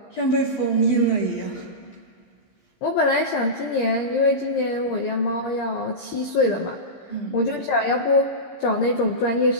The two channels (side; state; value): right; late; 15 ms